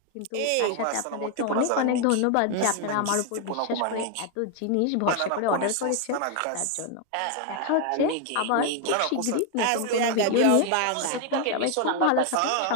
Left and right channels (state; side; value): different; both; correlation 0.00